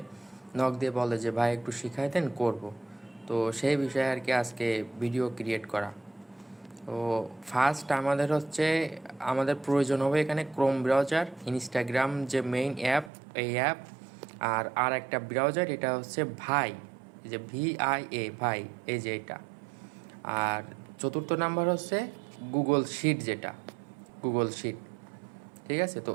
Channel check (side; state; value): left; drops out; at 13.1 s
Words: নক দিয়ে বলে যে ভাই একটু শিখাই দেন, করব। তো সেই বিষয়ে আর কি আজকে ভিডিও ক্রিয়েট করা। তো ফার্স্ট আমাদের প্রয়োজন হবে এখানে ক্রোম ব্রাউজার, ইনস্টাগ্রাম যে মেইন অ্যাপ, এই অ্যাপ, আর একটা ব্রাউজার, এটা হচ্ছে ভাই, এই যে VIA ভাই, এই যে এটা। আর চতুর্থ নাম্বার হচ্ছে গুগল শিট, যেটা গুগল শিট। ঠিক আছে, তো